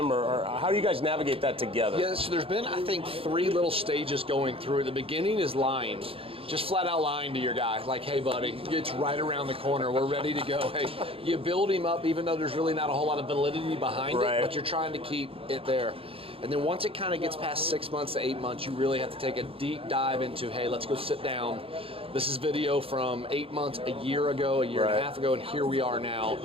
or how do you guys navigate that together? Yeah, so there's been, I think, 3 little stages going through. The beginning is lying. Just flat out lying to your guy, like, hey, buddy, it's right around the corner. We're ready to go. Hey, you build him up, even though there's really not a whole lot of validity behind it, but you're trying to keep it there. And then once it kind of gets past 6 months to 8 months, you really have to take a deep dive into, hey, let's go sit down. This is video from 8 months, a year ago, a year and a half ago, and here we are now.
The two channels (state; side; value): late; left; 0.27 ms